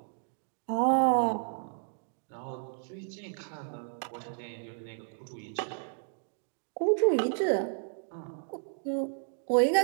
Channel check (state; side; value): silent; left; digital silence